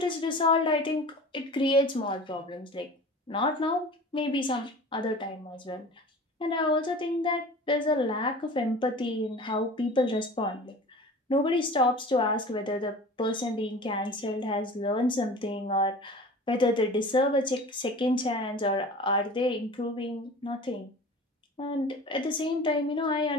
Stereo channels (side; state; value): both; normal; correlation 0.39